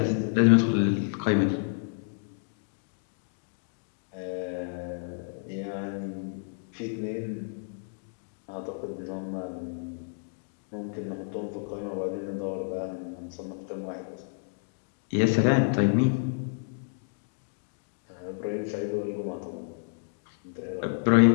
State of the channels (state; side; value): silent; right; digital silence